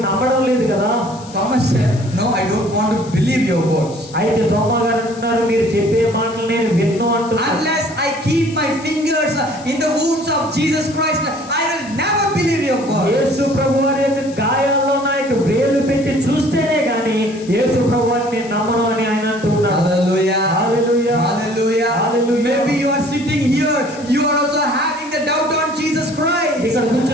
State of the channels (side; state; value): left; noise; hiss, 20 dB below the sound